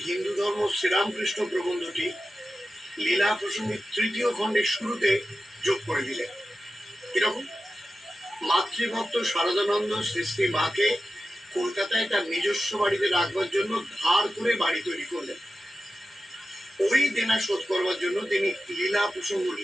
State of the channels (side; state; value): both; normal; correlation 0.93